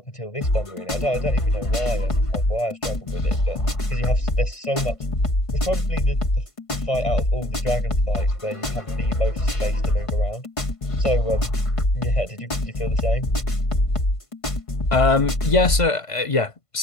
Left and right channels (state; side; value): late; right; 1.5 ms